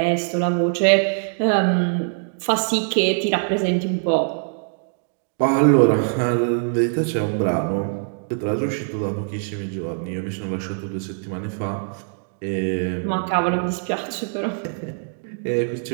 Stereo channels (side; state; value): left; silent; digital silence